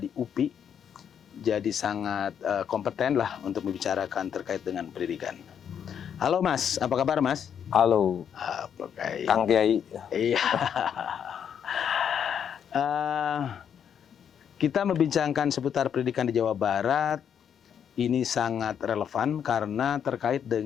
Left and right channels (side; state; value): right; quieter; 8.3 dB